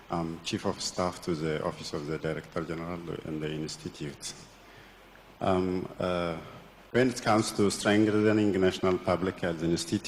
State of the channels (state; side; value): identical; both; correlation 1.00